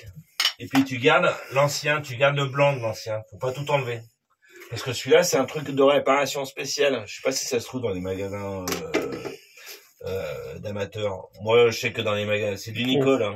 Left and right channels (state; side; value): identical; both; correlation 1.00